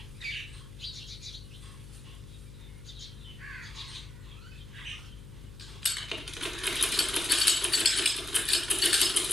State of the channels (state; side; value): noise; left; hum, 14 dB below the sound